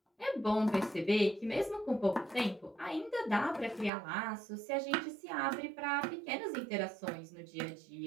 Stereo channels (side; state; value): left; drops out; at 3.9 s